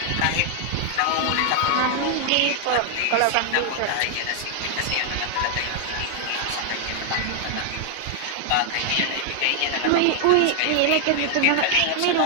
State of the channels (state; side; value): different; both; correlation 0.00